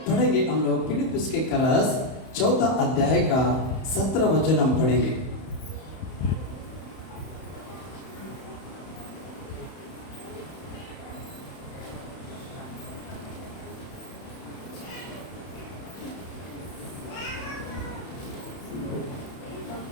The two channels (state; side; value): late; right; 31 ms